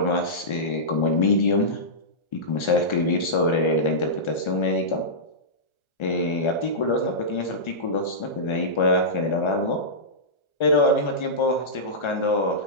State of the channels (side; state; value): right; late; 1.3 ms